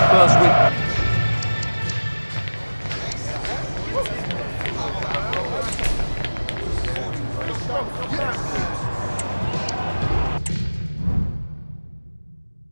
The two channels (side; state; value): both; inverted; correlation -1.00